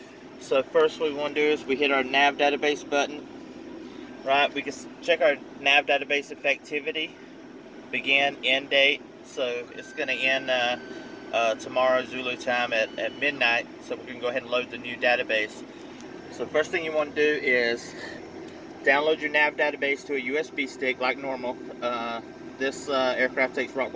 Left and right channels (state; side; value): identical; both; correlation 1.00